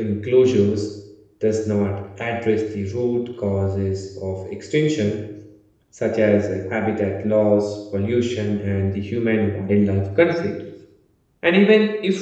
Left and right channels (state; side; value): identical; both; correlation 1.00